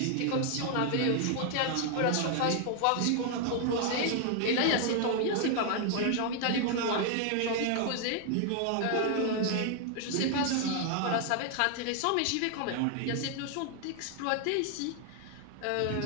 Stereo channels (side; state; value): both; different; correlation 0.00